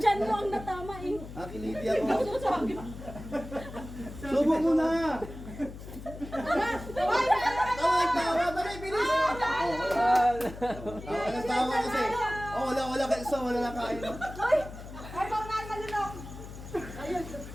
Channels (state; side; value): noise; left; hum, 13 dB below the sound